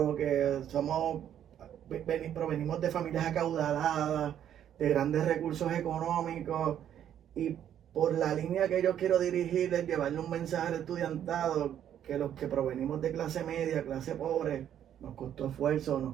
que provenimos de familias acaudaladas, de grandes recursos económicos, y por la línea que yo quiero dirigir es llevarle un mensaje al estudiantado que los que provenimos de clase media, clase pobre, nos costó esfuerzo,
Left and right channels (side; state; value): left; quieter; 10.1 dB